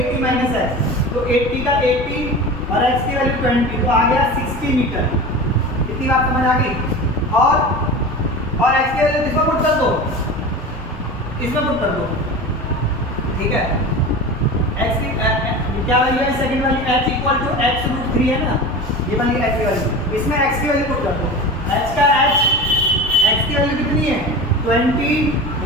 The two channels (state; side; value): normal; both; correlation 0.32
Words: माइनस x, तो 80 का 80 और x की वैल्यू 20 तो आ गया 60 मीटर। इतनी बात समझ आ गई। और की वैल्यू इसमें पुट कर दो, इसमें पुट कर दो, ठीक है। x की क्या वैल्यू है सेकंड वाली, h इक्वल टू x√3 है ना, ये वाली h की वैल्यू, इसमें x की वैल्यू पुट कर दो। x की वैल्यू कितनी है